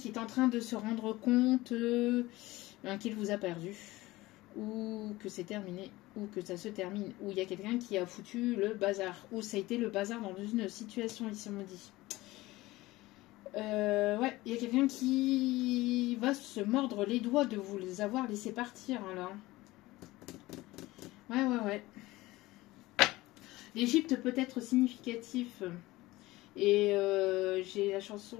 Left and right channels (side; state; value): right; quieter; 19.0 dB